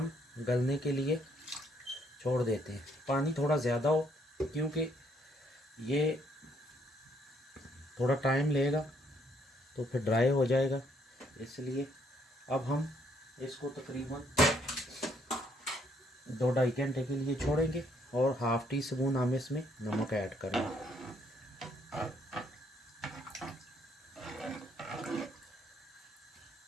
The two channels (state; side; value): normal; both; correlation 0.69